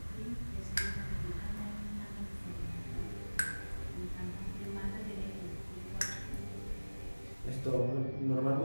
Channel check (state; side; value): inverted; both; correlation -1.00